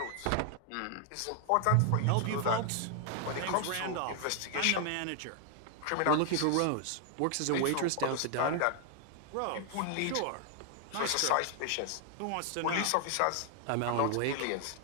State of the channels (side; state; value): both; different; correlation 0.00